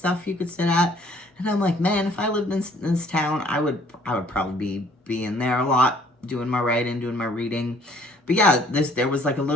you could sit at. And I'm like, man, if I lived in this town, I would probably be in there a lot, doing my writing, doing my reading. But yeah, there was like a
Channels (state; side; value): normal; both; correlation 0.58